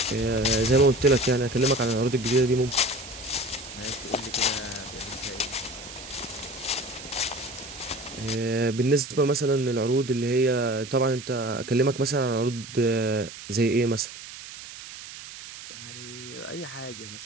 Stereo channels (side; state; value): right; noise; hiss, 13 dB below the sound